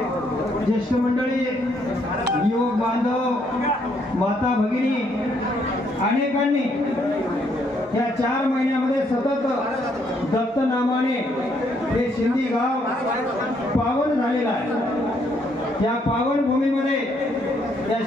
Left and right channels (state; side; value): normal; both; correlation 0.71